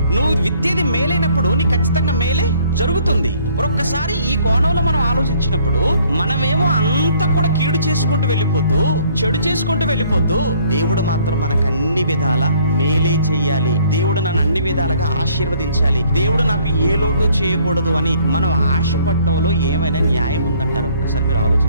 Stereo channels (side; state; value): both; inverted; correlation -0.61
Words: నువ్వు విత్తేది మేలైనప్పుడు నీ ఖచ్చితంగా మేలే జరుగుతుంది. ఒక్కసారి ఈ కోణంలో మనం ఆలోచించినప్పుడు మనమేమో అంతా కూడా కీడు చేసుకుంటూ వెళ్ళిపోతూ చెడు చేసుకుంటూ వెళ్ళిపోతూ దేవుడు మాత్రం మనకు అన్ని విధాల మేలే చెయ్యాలి, దేవుడు నన్ను అన్ని విధాలుగా ఆశీర్వదించాలి, దేవుడు నాకు ఏ లోటు చేయకూడదు అని మనం ఆశపడటంలో ఏమైనా న్యాయం ఉందంటారు? ఒక్కసారి మీరు